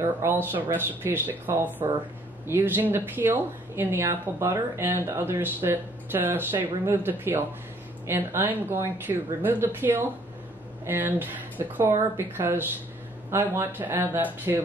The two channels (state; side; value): normal; both; correlation 0.62